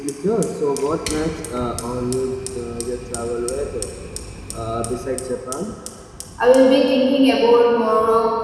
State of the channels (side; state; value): both; identical; correlation 1.00